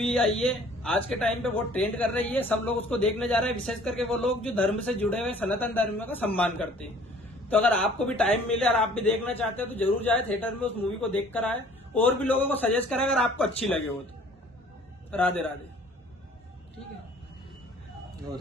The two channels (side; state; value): both; normal; correlation 0.53